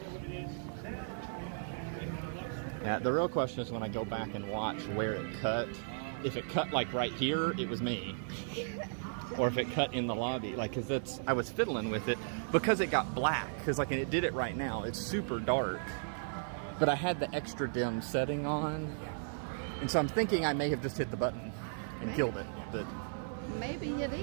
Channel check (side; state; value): left; silent; digital silence